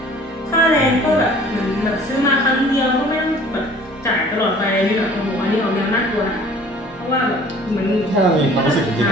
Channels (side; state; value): both; normal; correlation 0.50